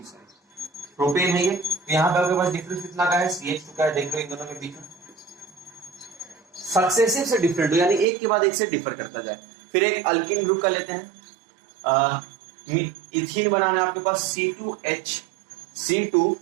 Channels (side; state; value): left; drops out; at 8.1 s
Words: है ये। तो यहाँ पे आपके पास डिफरेंस कितना का है, CH2 का है। देख लो इन दोनों के बीच में सक्सेसिव से डिफरेंट हो, यानी एक के बाद एक से डिफर करता जाए। फिर एक अल्किन ग्रुप का लेते हैं, इथीन बनाना है आपके पास C2